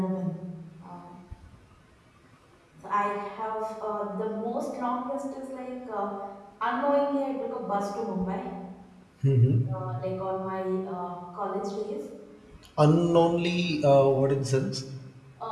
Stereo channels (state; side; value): identical; both; correlation 1.00